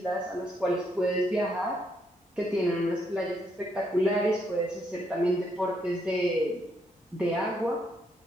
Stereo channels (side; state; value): both; normal; correlation 0.75